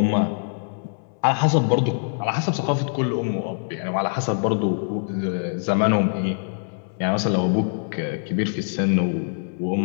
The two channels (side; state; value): right; silent; 63 dB below the other